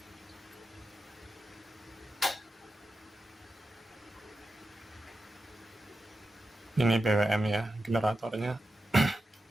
Ini PWM ya, generatornya.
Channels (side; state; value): both; normal; correlation 0.90